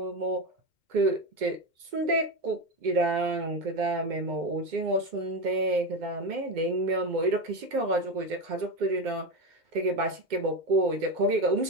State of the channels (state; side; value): late; left; 2.1 ms